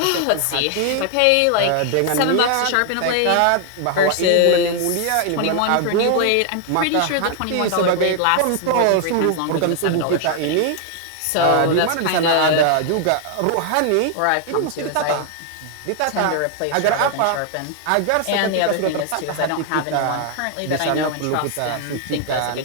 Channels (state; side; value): different; both; correlation 0.00